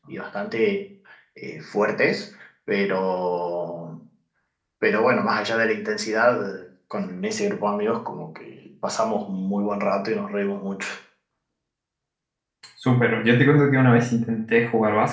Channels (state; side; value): identical; both; correlation 1.00